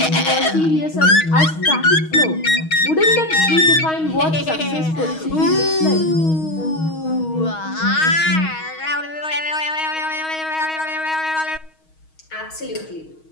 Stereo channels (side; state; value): right; late; 6.3 ms